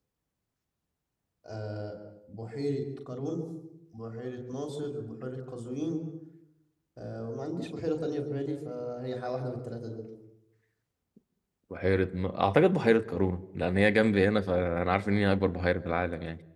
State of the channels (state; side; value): identical; both; correlation 1.00